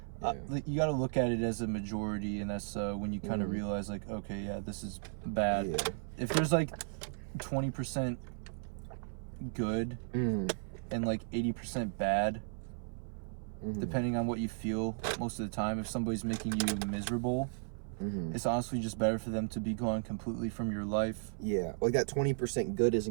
like, you got to look at it as a majority, and that's when you kind of realize, like, okay, yeah, this is bad. If there's like 20% good and like 80% bad, depending on what you feel most of the time, if somebody's making you miserable, it's honestly just better for them to be gone completely from your life. Yeah, like that 20% good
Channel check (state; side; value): silent; left; 54 dB below the other